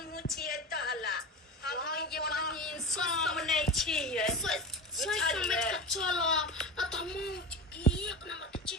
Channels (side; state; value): both; normal; correlation 0.27